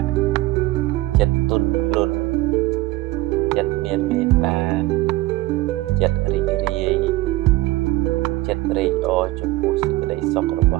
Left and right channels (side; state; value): left; quieter; 18.9 dB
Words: ់ចិត្តទន់ភ្លន់ចិត្តមានមេត្តាចិត្តរីករាយចិត្តត្រេកអរចំពោះសេចក្តីសុខរប